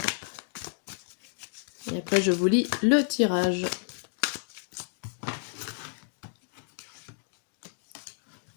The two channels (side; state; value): right; silent; 57 dB below the other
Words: Et après, je vous lis le tirage.